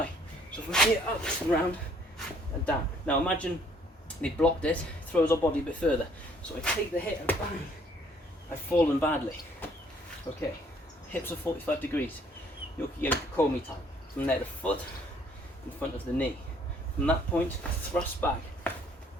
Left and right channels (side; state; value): both; normal; correlation 0.62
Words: So from here, up and round and down. Now imagine they blocked it, throws our body a bit further. So I take the hit and bang, I've fallen badly. Okay, hips are 45 degrees. Yoki-geri komi time. From there, the foot in front of the knee. From that point, thrust back.